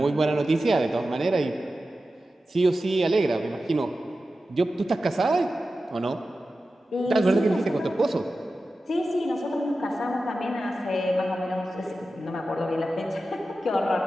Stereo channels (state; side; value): normal; both; correlation 0.93